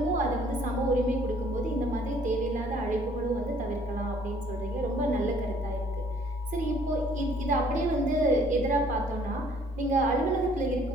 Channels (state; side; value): normal; both; correlation 0.59